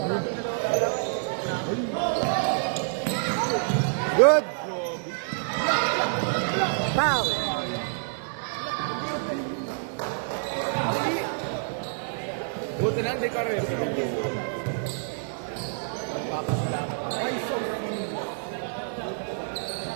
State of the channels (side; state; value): left; silent; digital silence